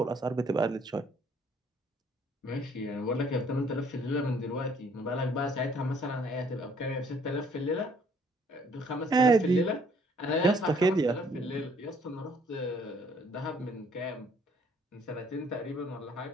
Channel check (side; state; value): both; normal; correlation 0.62